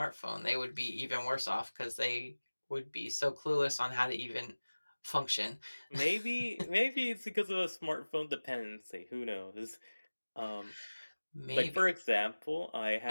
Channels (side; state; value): both; inverted; correlation -1.00